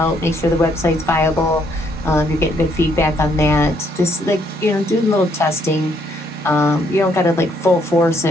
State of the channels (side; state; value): both; normal; correlation 0.70